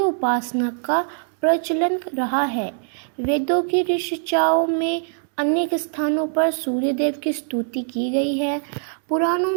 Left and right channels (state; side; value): silent; left; digital silence